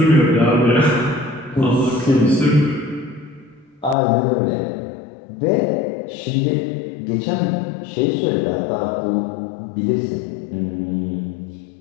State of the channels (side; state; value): right; drops out; at 4.0 s